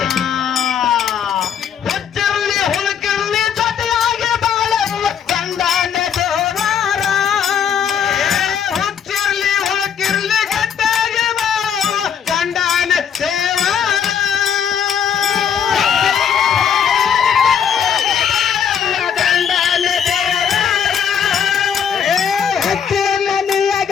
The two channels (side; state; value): right; quieter; 7.9 dB